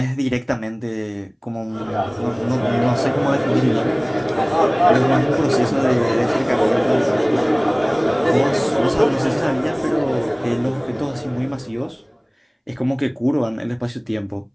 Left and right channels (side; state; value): both; identical; correlation 1.00